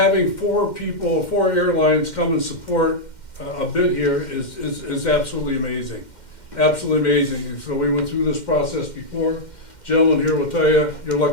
four airlines come and support a bid here is absolutely amazing. Absolutely amazing. So we went through this process before. Gentlemen here will tell you, you're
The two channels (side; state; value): right; late; 2.1 ms